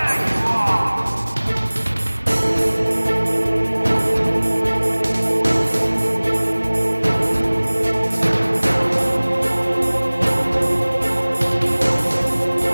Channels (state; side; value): inverted; both; correlation -1.00